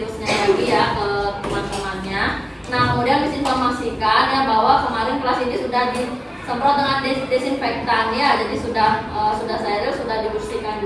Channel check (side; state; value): both; identical; correlation 1.00